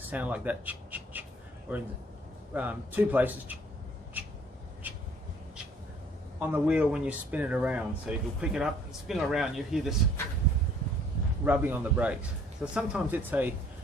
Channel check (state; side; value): normal; both; correlation 0.58